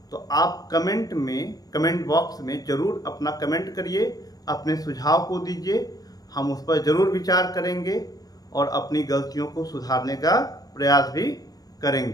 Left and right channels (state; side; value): late; right; 0.18 ms